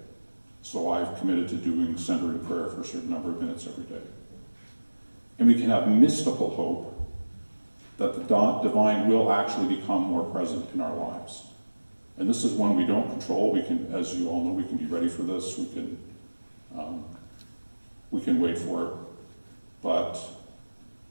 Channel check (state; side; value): inverted; both; correlation -1.00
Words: So I've committed to doing centering prayer for a certain number of minutes every day. And we can have mystical hope that the divine will actually become more present in our lives. And this is one we don't control. We can, as you all know, we can be ready for this. We can wait for it. But